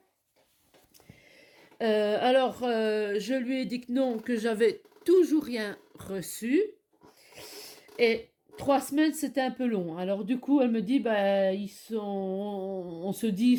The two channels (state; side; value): identical; both; correlation 1.00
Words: Je lui ai dit que non, que j'avais toujours rien reçu. Et 3 semaines, c'était un peu long. Alors du coup, elle me dit, bah, on